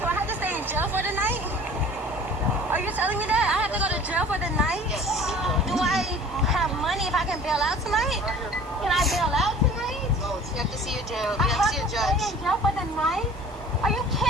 I have to stay in jail for the night? Are you telling me that? I have to go to jail for the night? Yes. Do I have money if I can bail out tonight? Can I bail out tonight? No, you have to see a jail. You have to see a judge. Stay in jail for the night? Are you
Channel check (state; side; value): normal; both; correlation 0.45